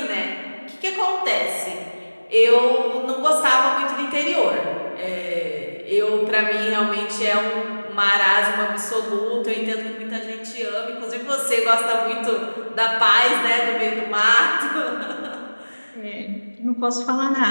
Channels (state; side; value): inverted; both; correlation -1.00